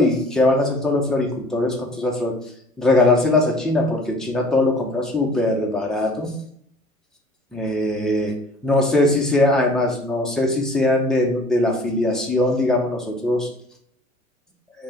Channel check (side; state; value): both; normal; correlation 0.49